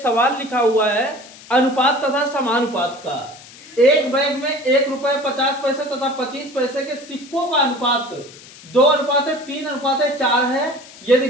लिखा हुआ है अनुपात तथा समानुपात का। एक बैग में ₹1.50 तथा 25 पैसे के सिक्कों का अनुपात 2:3:4 है। यदि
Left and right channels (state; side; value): noise; left; hiss, 20 dB below the sound